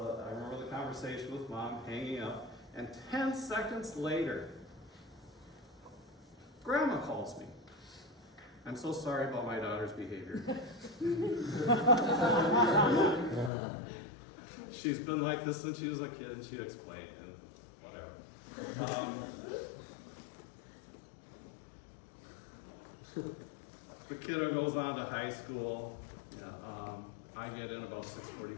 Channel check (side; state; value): right; drops out; at 13.5 s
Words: I remember the conversation with mom hanging up, and 10 seconds later, Grandma calls me. I'm so sorry about my daughter's behavior. She's been like this since she was a kid, and she'd explain, and whatever. The kiddo goes on to high school. Yeah, I get in about